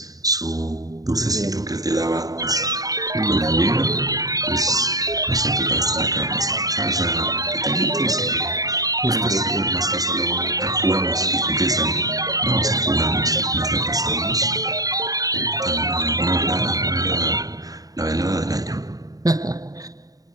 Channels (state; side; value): late; left; 0.18 ms